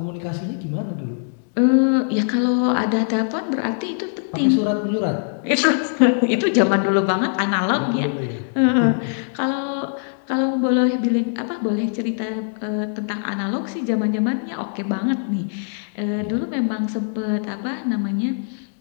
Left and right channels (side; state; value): right; silent; digital silence